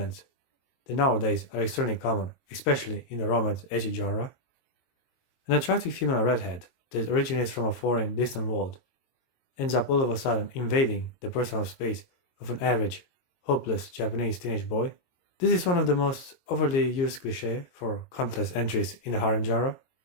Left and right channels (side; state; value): right; late; 22 ms